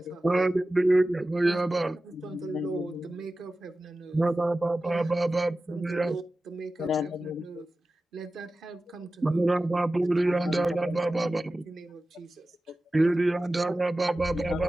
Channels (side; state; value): both; normal; correlation 0.95